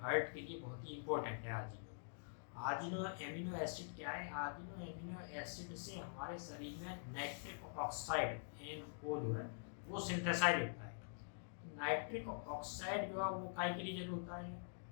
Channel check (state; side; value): silent; right; digital silence